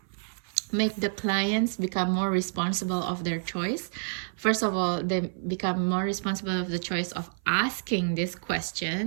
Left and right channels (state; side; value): silent; left; 57 dB below the other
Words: make the clients become more responsible of their choice. First of all, they become more responsible of the choice of asking these